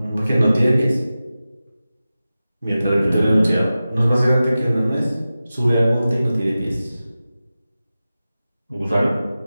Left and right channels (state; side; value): inverted; both; correlation -0.95